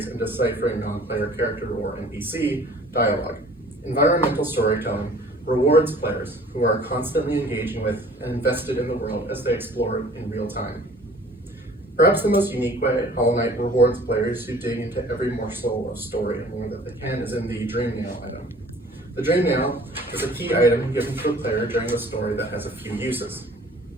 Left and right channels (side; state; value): both; normal; correlation 0.50